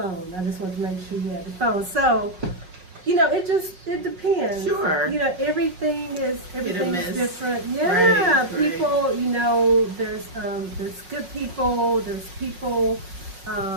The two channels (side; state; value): left; late; 5.5 ms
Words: I just wanted to make sure you had your phone. So, it depends. Sure. Everything is different. Yeah, Right, people, there's good people, there's people,